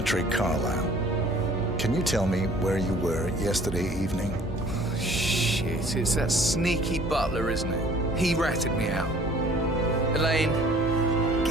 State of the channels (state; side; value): normal; both; correlation 0.53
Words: Carlyle, can you tell me where you were yesterday evening? Shit, it's that sneaky butler, isn't it? He ratted me out. Elaine,